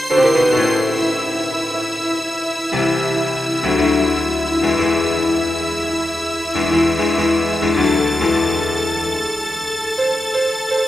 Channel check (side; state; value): both; normal; correlation 0.89